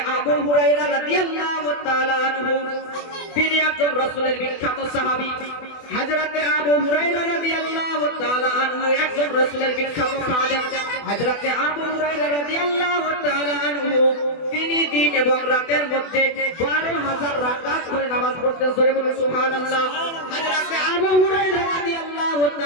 আবু হুরায়রা রাদিয়াল্লাহু তাআলা আনহু, তিনি একজন রাসূলের বিখ্যাত সাহাবী। হযরতে আবু হুরায়রা রাদিয়াল্লাহু তাআলা আনহু একজন রাসূলের বিখ্যাত খাদেম। হযরতে আবু হুরায়রা রাদিয়াল্লাহু তাআলা আনহু, তিনি দিন এবং রাতের মধ্যে 12,000 রাকাত করে নামাজ পড়তেন। জোরে বলুন সুবহানাল্লাহ। হযরতে আবু হুরায়রা রাদিয়াল্লাহু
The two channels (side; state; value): right; late; 24 ms